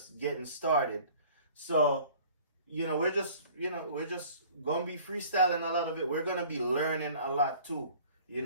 getting started. So, we're just gonna be freestyling a lot of it. We're gonna be learning a lot too,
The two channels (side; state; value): both; inverted; correlation -0.50